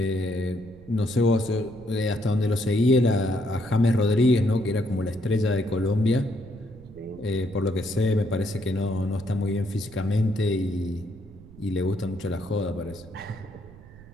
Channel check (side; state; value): right; noise; rumble, 20 dB below the sound